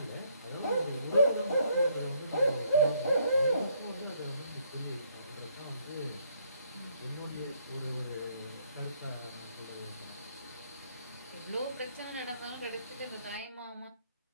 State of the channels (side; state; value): both; inverted; correlation -0.68